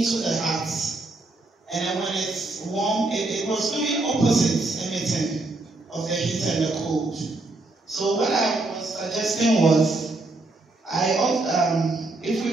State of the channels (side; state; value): left; quieter; 3.1 dB